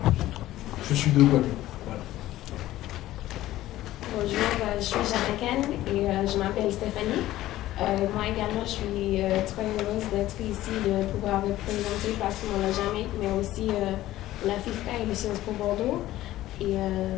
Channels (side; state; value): right; quieter; 15.1 dB